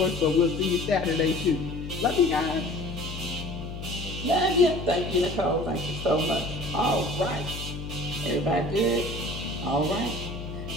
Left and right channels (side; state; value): left; noise; hum, 8 dB below the sound